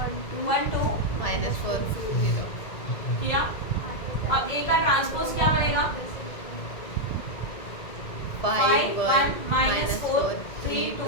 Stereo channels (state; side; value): late; right; 2.1 ms